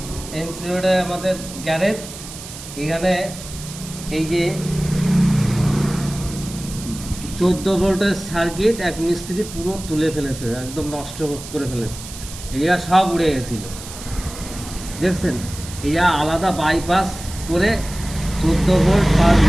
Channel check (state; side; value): noise; right; hiss, 13 dB below the sound